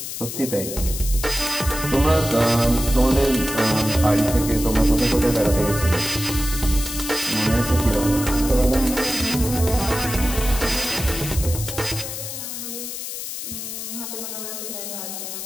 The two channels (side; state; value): left; noise; hiss, 7 dB below the sound